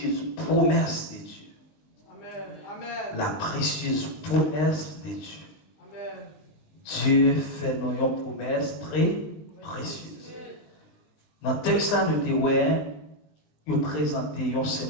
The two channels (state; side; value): late; right; 20 ms